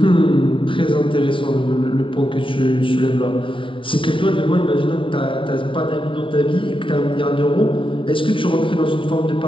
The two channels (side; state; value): right; late; 0.25 ms